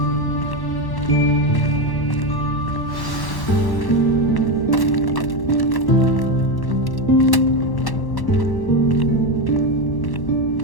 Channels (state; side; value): late; right; 1.1 ms